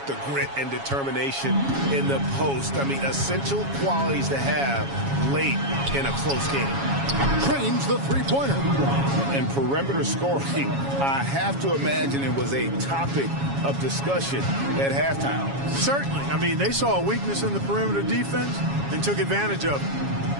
the grit and determination in the post? I mean, essential qualities to have late in a close game. Trains the three-pointer. And perimeter scoring, I have to imagine it was a topic of discussion at halftime. Certainly. I mean, they saw a weakness in the perimeter defense and took advantage of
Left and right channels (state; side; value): late; left; 7.2 ms